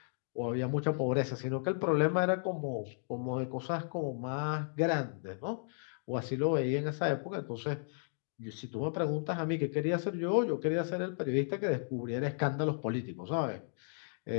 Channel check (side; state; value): right; silent; digital silence